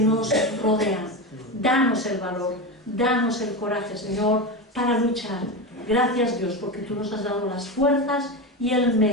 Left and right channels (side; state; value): both; normal; correlation 0.19